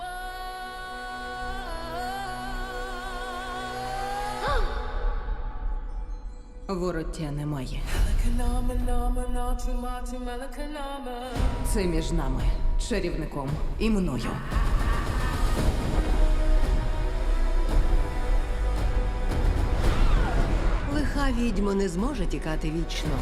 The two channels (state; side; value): identical; both; correlation 1.00